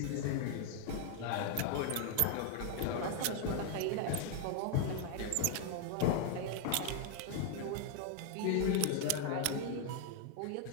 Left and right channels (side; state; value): both; different; correlation 0.00